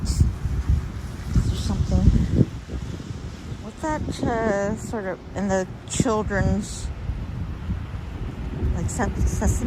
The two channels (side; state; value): both; identical; correlation 1.00